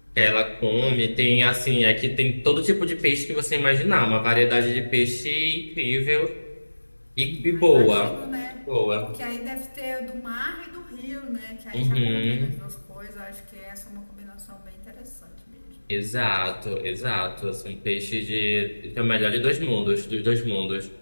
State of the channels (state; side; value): inverted; both; correlation -1.00